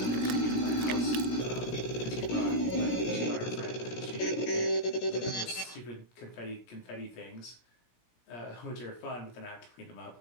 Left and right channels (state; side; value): late; right; 17 ms